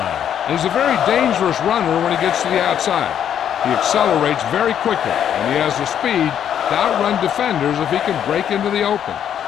He's a very dangerous runner when he gets to the outside. He accelerates very quickly, and he has the speed to outrun defenders if he can break into the open.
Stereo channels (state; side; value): quieter; right; 9.4 dB